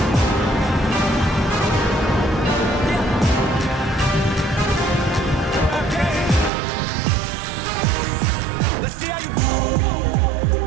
see how you go.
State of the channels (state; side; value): drops out; left; at 6.5 s